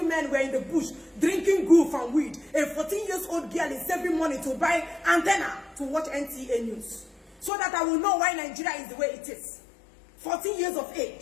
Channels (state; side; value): drops out; right; at 7.5 s